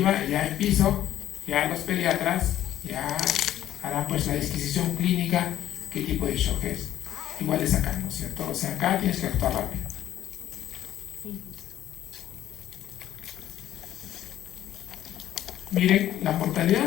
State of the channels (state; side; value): quieter; right; 12.3 dB